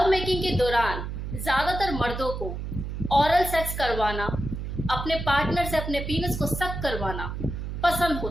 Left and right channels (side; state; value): right; noise; hum, 6 dB below the sound